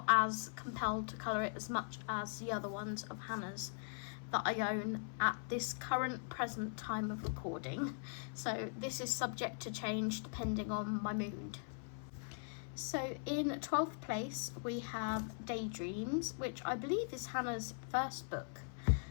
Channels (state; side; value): silent; right; 51 dB below the other